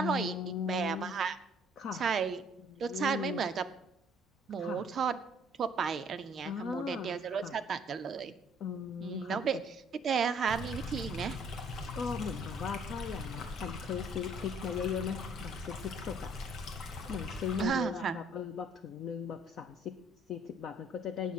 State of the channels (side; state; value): both; normal; correlation 0.60